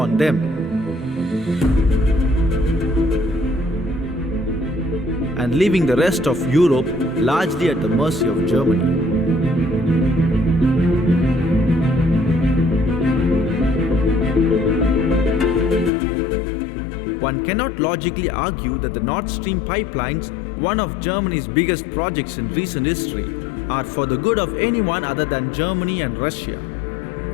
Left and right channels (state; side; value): drops out; right; at 15.9 s